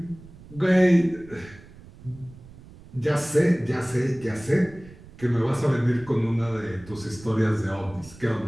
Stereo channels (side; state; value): right; noise; rumble, 20 dB below the sound